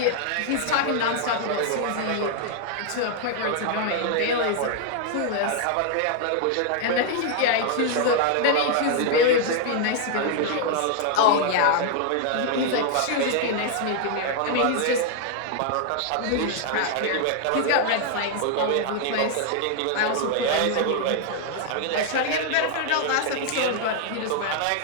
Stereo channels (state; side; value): different; both; correlation 0.00